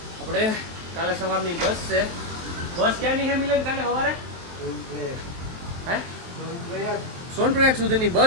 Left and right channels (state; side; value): late; left; 23 ms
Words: આપણે કાલે સવારની બસ છે. બસ ક્યાંની છે મિલન કાલે સવારે? હે સોનપ્રયાગ સુધીની